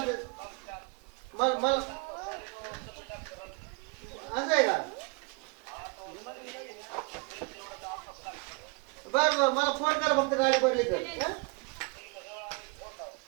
मला मला असं आहे का? बर बर मला फोन करा फक्त गाडी भरली तर.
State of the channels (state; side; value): quieter; left; 29.5 dB